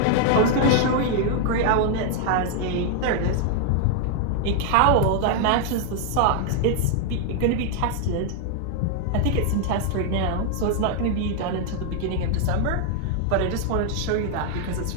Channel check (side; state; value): both; different; correlation 0.00